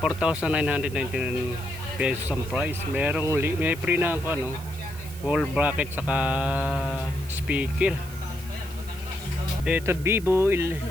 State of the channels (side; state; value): right; noise; hiss, 18 dB below the sound